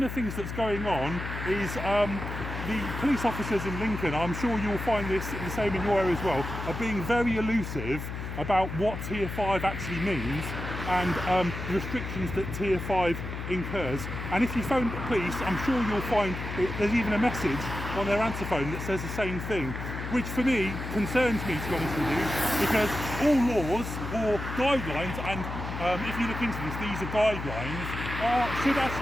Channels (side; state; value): left; noise; hum, 6 dB below the sound